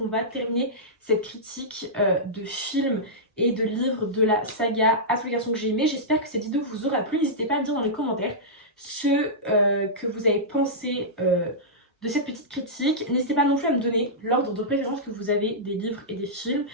va terminer cette critique de films et de livres de la saga À tous les garçons que j'ai aimé. J'espère que cette vidéo vous aura plu. N'hésitez pas à me dire dans les commentaires ce que vous avez pensé de cette petite critique. N'hésitez pas non plus à me donner l'ordre de préférence que vous avez des livres et des films.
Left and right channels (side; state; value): both; normal; correlation -0.13